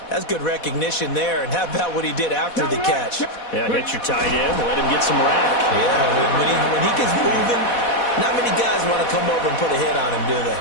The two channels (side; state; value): right; late; 4.1 ms